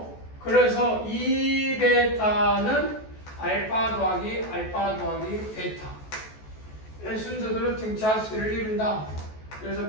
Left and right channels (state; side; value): late; right; 14 ms